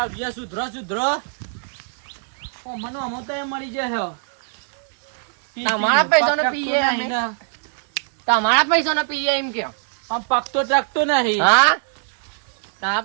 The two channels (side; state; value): left; silent; digital silence